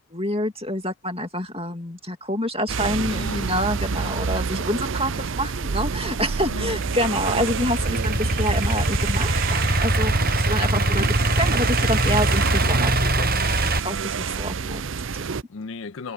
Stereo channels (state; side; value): normal; both; correlation 0.49